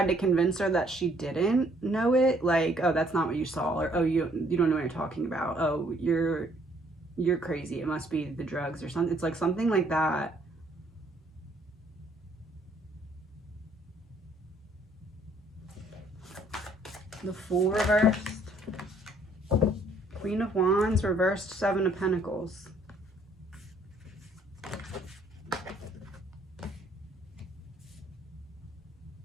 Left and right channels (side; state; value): both; normal; correlation 0.64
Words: to convince her that she didn't know it. Like, oh, that's not what you saw. Or, oh, you don't know what you're talking about. Oh, you're crazy. It must be the drugs or something. It's like something like that. The Fool reversed. Queen of Wands, reversed 7 of Pentacles.